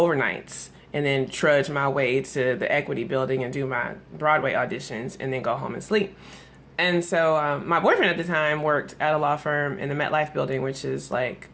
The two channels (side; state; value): both; identical; correlation 1.00